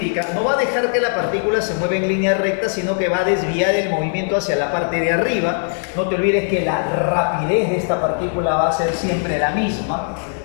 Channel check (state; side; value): silent; right; 61 dB below the other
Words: no va a dejar que la partícula se mueva en línea recta, sino que va a desviar el movimiento hacia la parte de arriba. No te olvides que la rapidez de esta partícula va a ser siempre la misma